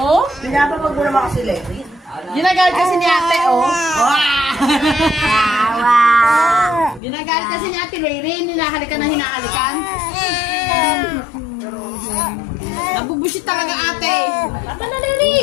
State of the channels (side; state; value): right; drops out; at 7.0 s